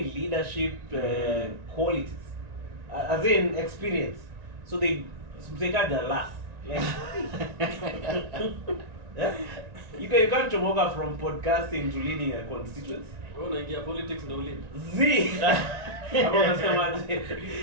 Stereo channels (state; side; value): late; left; 1.9 ms